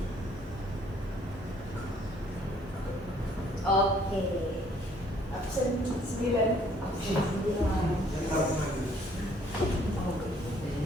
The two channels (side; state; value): both; normal; correlation 0.62